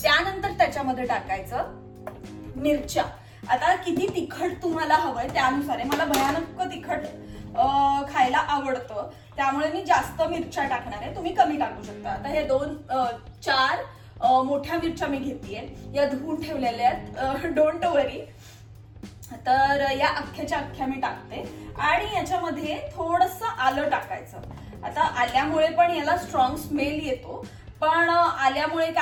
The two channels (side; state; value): both; identical; correlation 1.00